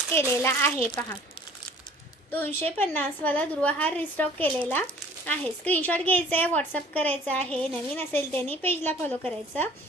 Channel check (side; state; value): both; normal; correlation 0.51